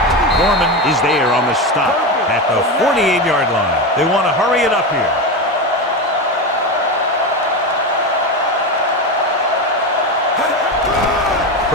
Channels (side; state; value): both; normal; correlation 0.18